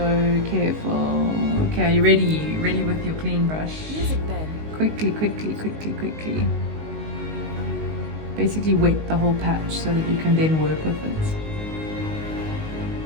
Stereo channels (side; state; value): left; late; 19 ms